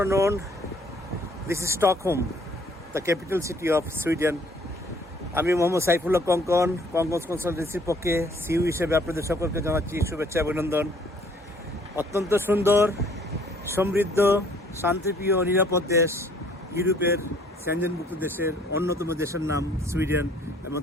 This is Stockholm, the capital city of Sweden. আমি মোহাম্মদ সাইফুল্লাহ কঙ্কন কনসালটেন্সির পক্ষে সিইও হিসেবে আপনাদের সকলকে জানাচ্ছি শুভেচ্ছা অভিনন্দন। অত্যন্ত সুন্দর, সমৃদ্ধ, শান্তিপ্রিয়, নিরাপদ দেশ, ইউরোপের সেনজেনভুক্ত দেশের অন্যতম দেশের নাম সুইডেন এবং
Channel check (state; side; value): normal; both; correlation 0.59